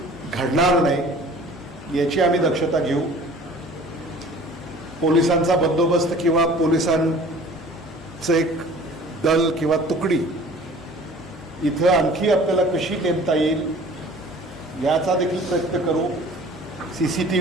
घडणार नाही याची आम्ही दक्षता घेऊ. पोलिसांचा बंदोबस्त किंवा पोलिसांचं एक दल किंवा तुकडी इथं आणखी आपल्याला कशी नेमता येईल याचा देखील प्रयत्न करू.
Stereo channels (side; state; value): left; noise; hum, 27 dB below the sound